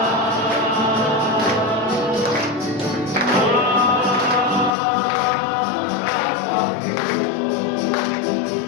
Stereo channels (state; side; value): drops out; right; at 4.8 s